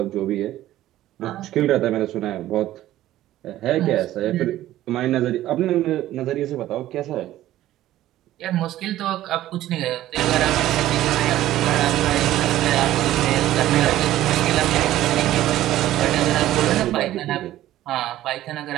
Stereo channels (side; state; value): left; quieter; 14.1 dB